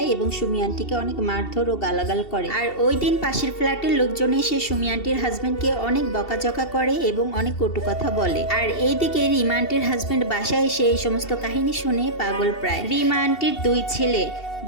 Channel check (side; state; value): right; late; 2.7 ms